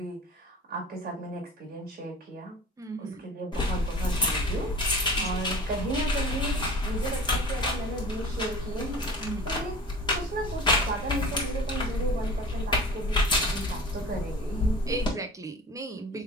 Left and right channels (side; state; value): both; normal; correlation 0.39